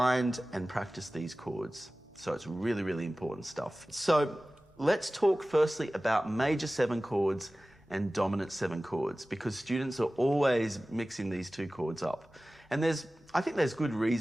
and practice these chords. So it's really, really important stuff. So let's talk firstly about major 7 chords and dominant 7 chords, because students are always mixing these two chords up. And I think there's good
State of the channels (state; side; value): normal; both; correlation 0.97